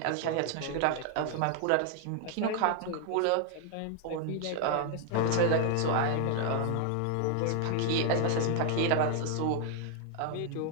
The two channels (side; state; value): both; different; correlation 0.00